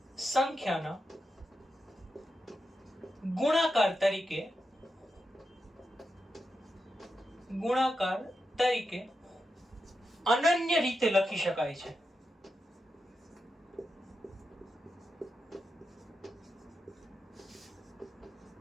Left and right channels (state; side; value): normal; both; correlation 0.87